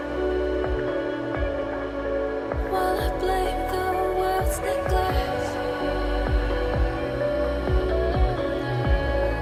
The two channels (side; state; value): both; identical; correlation 1.00